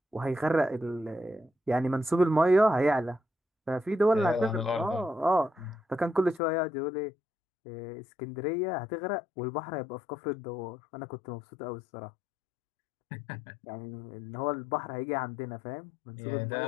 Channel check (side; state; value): right; drops out; at 6.4 s